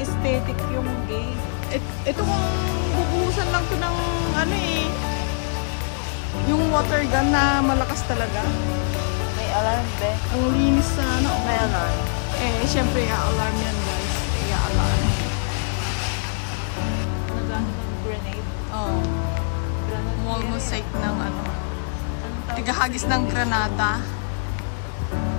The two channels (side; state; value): right; silent; digital silence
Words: yung gate. Ito kung bubuhusan lang to ng ano eh. Yung water gun na malakas talaga. May alarm din. Ang linis sa ano. May alarm. Eh, syempre, i-alarm yan guys. I-alarm. Nagano ng grenade. Oh, Granada. wall mosaic ng ano. Anong tawag? Tigahagis ng Granada.